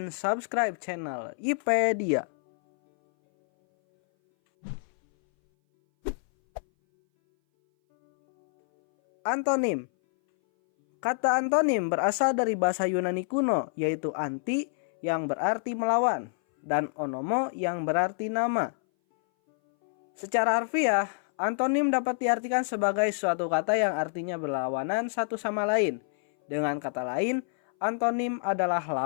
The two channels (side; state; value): right; silent; 59 dB below the other